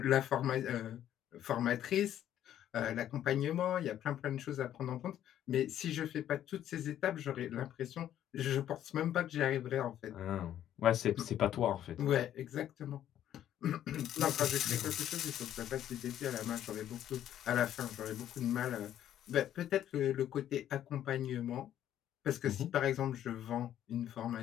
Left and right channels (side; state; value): right; quieter; 11.3 dB